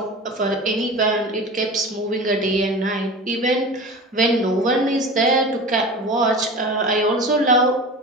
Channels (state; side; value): normal; both; correlation 0.33